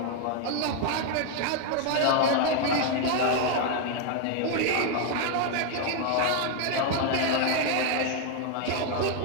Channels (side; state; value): both; different; correlation 0.01